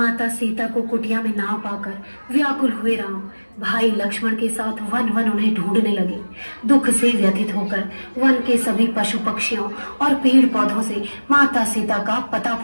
सीता को कुटिया में ना पाकर व्याकुल हुए राम भाई लक्ष्मण के साथ वन वन उन्हें ढूंढने लगे। दुख से व्यथित होकर वन के सभी पशु पक्षियों और पेड़ पौधों से माता सीता का पता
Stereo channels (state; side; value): inverted; both; correlation -1.00